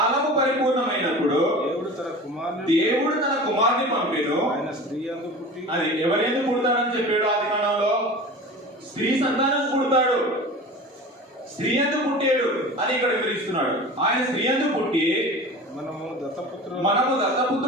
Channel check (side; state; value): both; normal; correlation 0.35